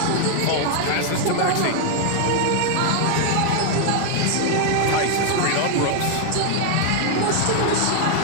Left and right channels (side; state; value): both; different; correlation 0.00